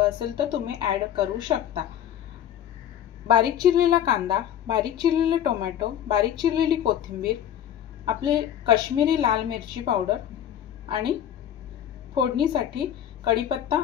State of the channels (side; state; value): right; quieter; 10.3 dB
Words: असेल तर तुम्ही ऍड करू शकता। बारीक चिरलेला कांदा, बारीक चिरलेले टोमॅटो, बारीक चिरलेली कोथिंबीर, आपले काश्मीरी लाल मिरची पावडर आणि फोडणीसाठी कढीपत्ता